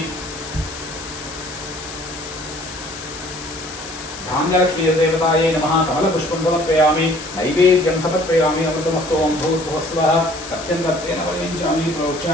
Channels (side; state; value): left; noise; hiss, 12 dB below the sound